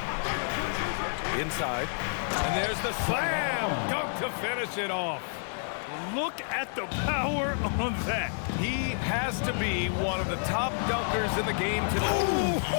Inside. And there's the slam dunk to finish it off. Look at the power on that. He has to be one of the top dunkers in the game today. Oh,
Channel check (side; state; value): right; silent; digital silence